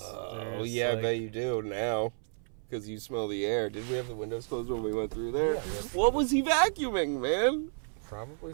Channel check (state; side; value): silent; left; 57 dB below the other